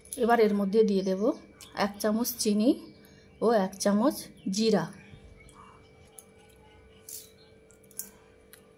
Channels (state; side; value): identical; both; correlation 1.00